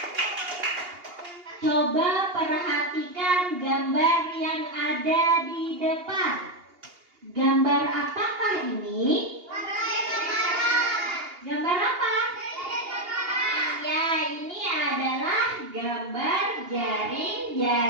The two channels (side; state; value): left; late; 2.8 ms